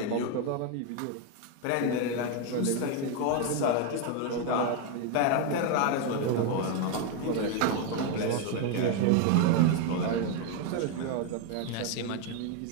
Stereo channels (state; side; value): different; both; correlation 0.01